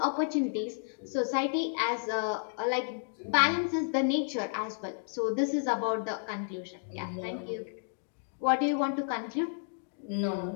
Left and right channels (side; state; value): right; silent; digital silence